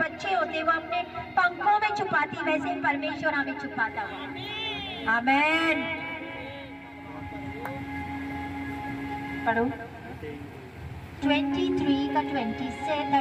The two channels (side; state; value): both; identical; correlation 1.00